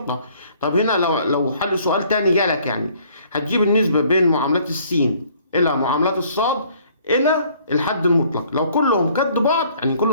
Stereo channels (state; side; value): inverted; both; correlation -0.60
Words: طب هنا لو حل سؤال تاني جالك، يعني هتجيب النسبه بين معاملات السين الى معاملات الصاد الى الحد المطلق، لو كلهم قد بعض يعني